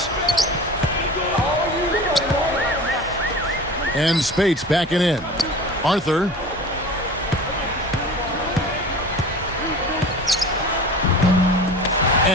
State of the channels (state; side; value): normal; both; correlation 0.37